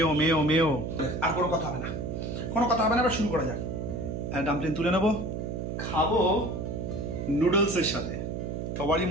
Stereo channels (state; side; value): noise; right; hum, 4 dB below the sound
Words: মেও মেও। আর কোনো কথা হবে না, কোনো কথা হবে না, আমরা শুরু করা যাক। ডাম্পলিং তুলে নেবো, খাবো নুডলসের সাথে। সবারই